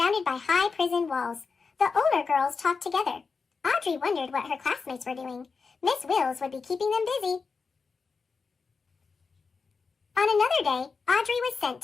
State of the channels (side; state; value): right; quieter; 4.9 dB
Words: by high prison walls. The older girls talked together. Audrey wondered what her classmates were doing. Miss Wills would be keeping them busy. On another day, Audrey was sent